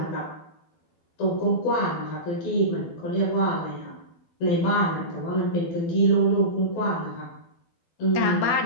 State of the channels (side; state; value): right; late; 12 ms